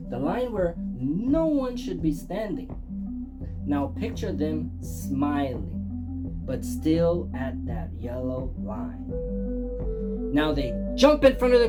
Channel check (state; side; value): identical; both; correlation 1.00